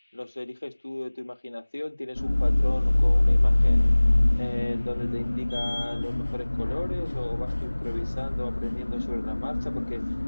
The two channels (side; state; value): both; inverted; correlation -1.00